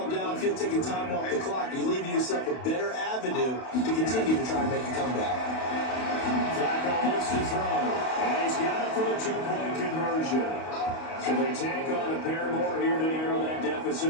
downfield, taking time off the clock. You're leaving yourself a better avenue to continue to try and make a comeback. Flacco looks to throw, and he's got it for the two-point conversion. So they tack on a pair more here to narrow that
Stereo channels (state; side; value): late; right; 32 ms